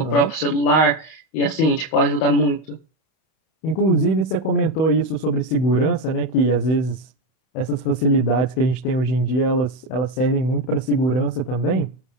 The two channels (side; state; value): right; late; 32 ms